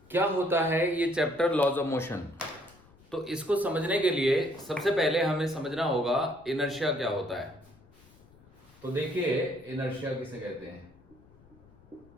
क्या होता है, ये चैप्टर लॉज ऑफ मोशन। तो इसको समझने के लिए सबसे पहले हमें समझना होगा इनर्शिया क्या होता है। तो देखिए इनर्शिया किसे कहते हैं।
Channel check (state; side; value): noise; left; rumble, 27 dB below the sound